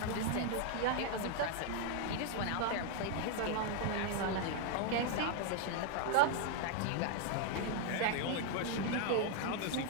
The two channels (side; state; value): both; different; correlation 0.00